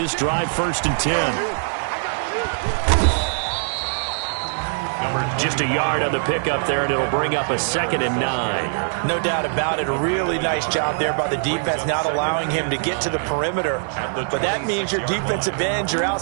drive, 1st and 10. Just a yard on the pickup there, and it'll bring up a 2nd and 9. No doubt about it. A really nice job there by the defense, not allowing him to get to the perimeter. But that means your defensive ends, your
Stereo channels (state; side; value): silent; left; digital silence